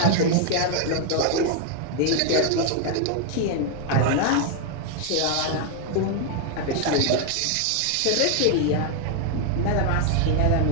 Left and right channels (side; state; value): both; different; correlation 0.00